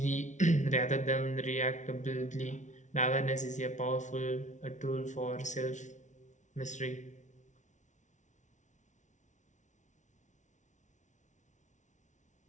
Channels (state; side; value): late; right; 0.36 ms